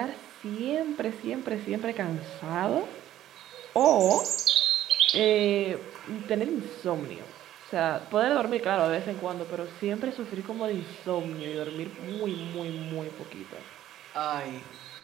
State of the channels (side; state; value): left; quieter; 12.8 dB